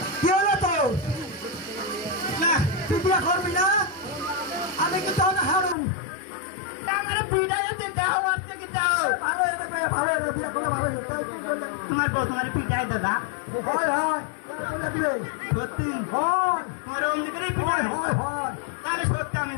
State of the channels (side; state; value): right; drops out; at 5.8 s